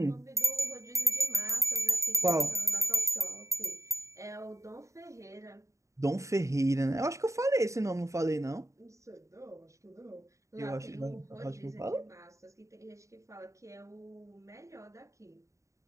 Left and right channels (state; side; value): late; left; 0.15 ms